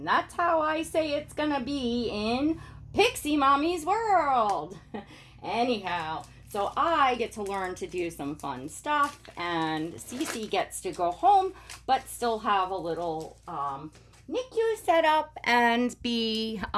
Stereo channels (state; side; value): identical; both; correlation 1.00